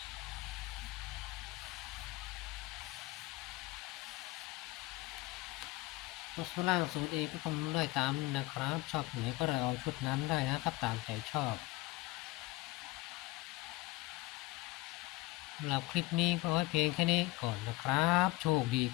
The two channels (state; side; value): quieter; right; 19.8 dB